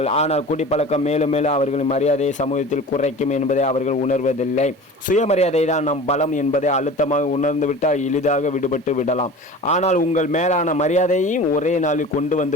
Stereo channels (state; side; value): normal; both; correlation 0.38